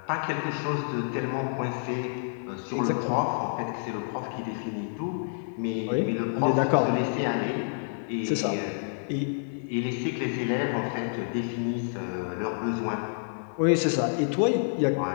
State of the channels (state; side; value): silent; right; 59 dB below the other